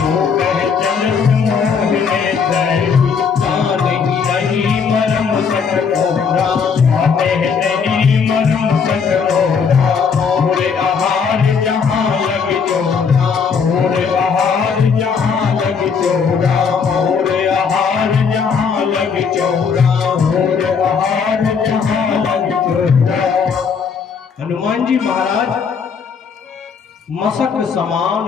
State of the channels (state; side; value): quieter; right; 6.0 dB